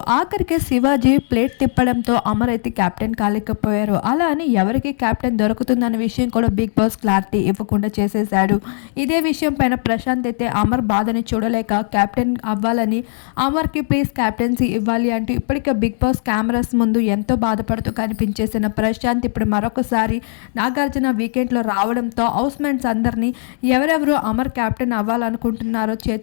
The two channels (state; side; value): silent; right; 65 dB below the other